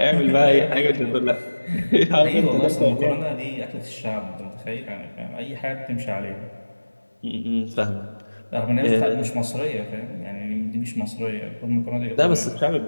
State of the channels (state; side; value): inverted; both; correlation -1.00